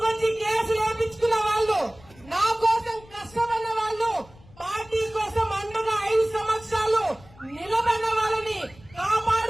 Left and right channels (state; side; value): noise; left; rumble, 24 dB below the sound